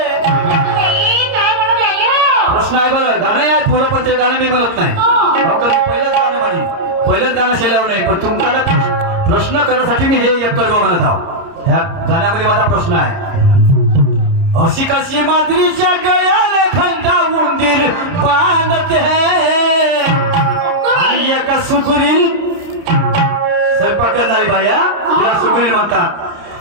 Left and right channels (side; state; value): left; late; 30 ms